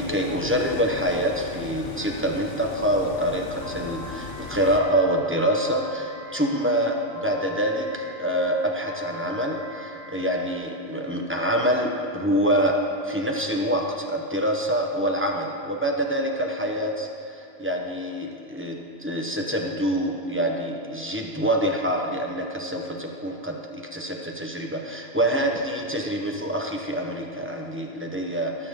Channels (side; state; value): both; normal; correlation 0.05